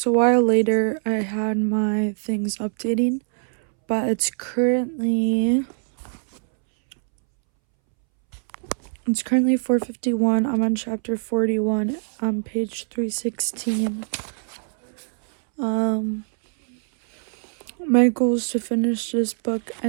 a while later. I had my things updating, but it's currently 4:51. I'm on chapter 41 on page 316. My goal is to finish this book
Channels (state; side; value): silent; left; 63 dB below the other